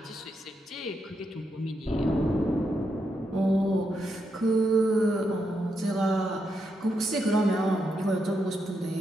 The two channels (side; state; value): both; normal; correlation 0.82